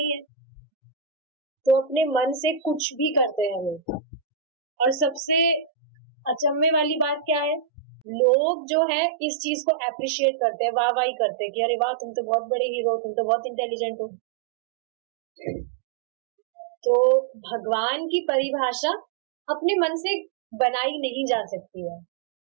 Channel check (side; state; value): left; drops out; at 8.1 s